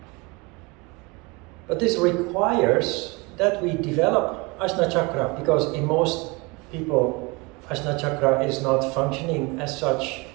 But this requires that we develop Ajna Chakra, because in most people, Ajna Chakra is not functioning as such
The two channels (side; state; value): left; quieter; 26.7 dB